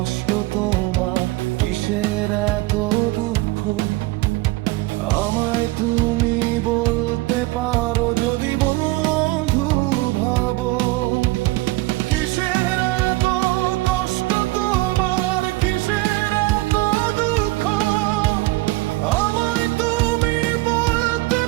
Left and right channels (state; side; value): quieter; left; 20.4 dB